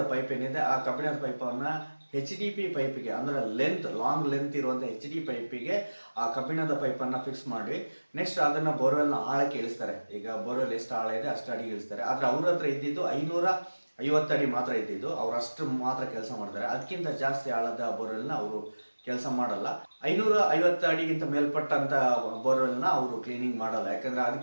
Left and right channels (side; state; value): both; inverted; correlation -1.00